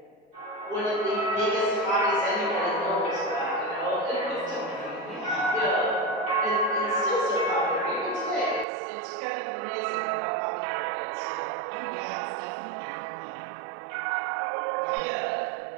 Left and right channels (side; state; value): left; drops out; at 8.7 s